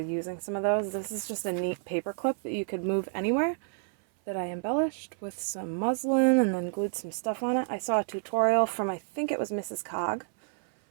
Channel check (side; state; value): left; silent; 58 dB below the other